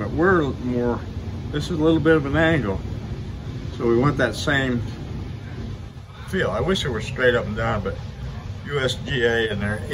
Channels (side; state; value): both; identical; correlation 1.00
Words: this is a little bit of an angle, so we want that same feel. I wish it were straight up and down, but USGA and their